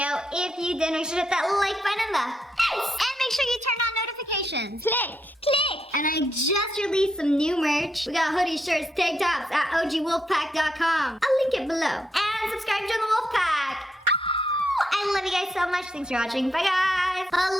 If you did, make sure to hit that like button in the face. And make sure you turn on notifications. Click. And I just released some new merch. We got hoodies, shirts, tank tops at ogwolfpack.com. I'll link it below. And subscribe to the Wolfpack. I love you guys so much. Thanks for watching. Bye, guys.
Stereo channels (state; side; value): normal; both; correlation 0.79